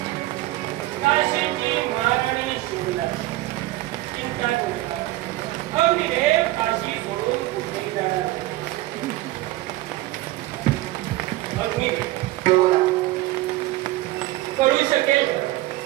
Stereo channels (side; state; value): left; quieter; 17.3 dB